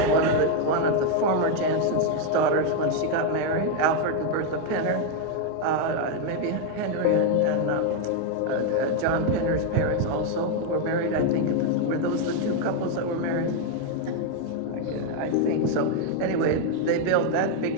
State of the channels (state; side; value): different; both; correlation 0.01